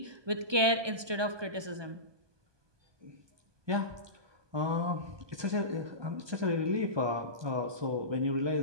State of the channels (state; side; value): late; left; 1.2 ms